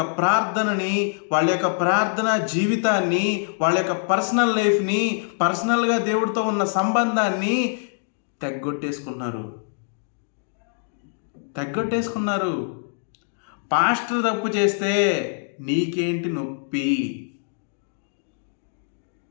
ప్రార్థనని, వాళ్ళ యొక్క ప్రార్థన జీవితాన్ని, వాళ్ళ యొక్క పర్సనల్ లైఫ్ని, పర్సనల్గా దేవుడితో ఉన్న సంబంధాన్ని తెగ్గొట్టేసుకున్నారు. పాస్టర్ తప్పు చేస్తే నీకేంటి నొప్పి,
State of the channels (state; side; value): silent; right; digital silence